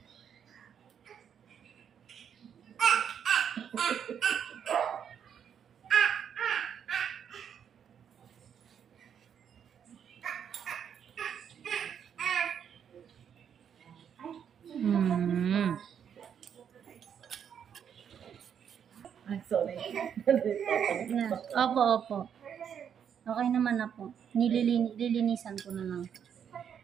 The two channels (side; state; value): left; quieter; 8.2 dB